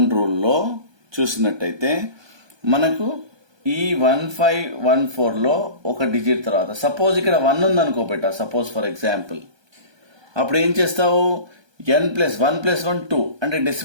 రూల్లో చూసినట్టయితే మనకు ఈ 1514లో ఒక డిజిట్ తర్వాత సపోజ్ ఇక్కడ 1 ఉందనుకో బెటా, సపోజ్ ఫర్ ఎగ్జాంపుల్, అప్పుడు ఏం చేస్తావు? n+1 +1 2 అంటే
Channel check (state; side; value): late; left; 1.2 ms